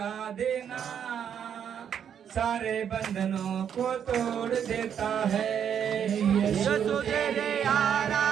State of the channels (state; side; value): quieter; left; 8.5 dB